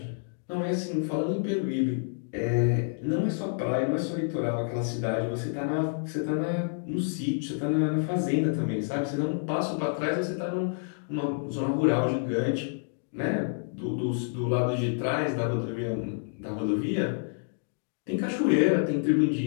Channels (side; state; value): right; silent; digital silence